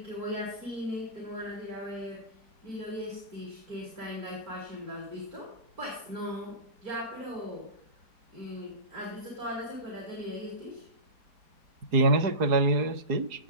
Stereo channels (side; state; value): left; late; 4.7 ms